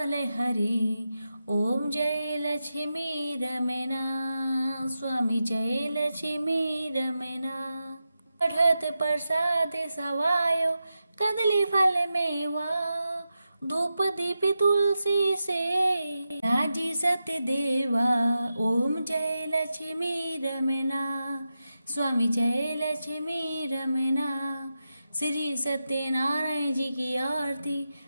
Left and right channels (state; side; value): inverted; both; correlation -0.90